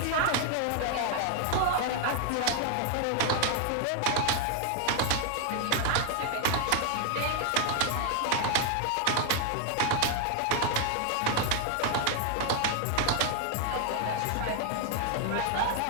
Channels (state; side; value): different; both; correlation 0.00